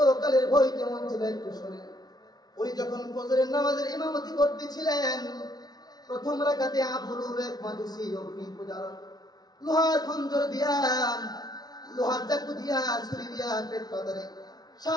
ভয় কেমন ছিল একটু শুনে। উনি যখন ফজরের নামাজের ইমামতি করতেছিলেন, প্রথম রাকাতে আবুল এক মাজুসি অগ্নি পূজার লোহার খঞ্জর দিয়া, লোহার চাকু দিয়া, ছুরি দিয়া পেট পাতারে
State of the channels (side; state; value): right; late; 0.19 ms